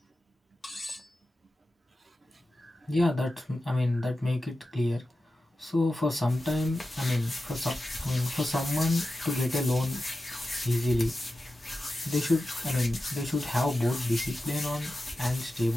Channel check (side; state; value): both; normal; correlation 0.93